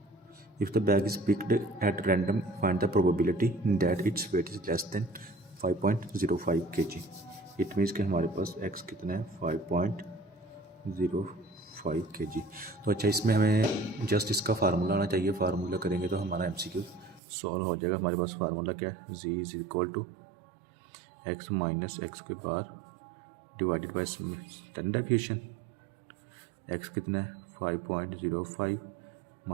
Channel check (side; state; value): left; drops out; at 17.2 s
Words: If the bag is picked at random, find the probability that its weight is less than 5.05 kg. It means कि हमारे पास x कितना है 5.05 kg। तो अच्छा, इसमें हमें जस्ट इसका फार्मूला आना चाहिए। फार्मूला करेंगे तो हमारा MCQ सॉल्व हो जाएगा। हमारे पास फार्मूला क्या है, z is equal to x minus X के बार divided by standard deviation. x कितना है 5.05